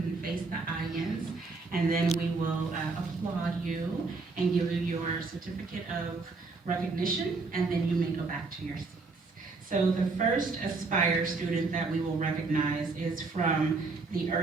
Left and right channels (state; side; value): quieter; left; 4.0 dB